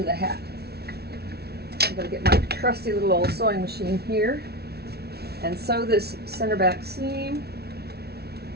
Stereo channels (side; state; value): left; late; 0.46 ms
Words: the hat. I'm going to get my trusty little old sewing machine here and sew this center back seam.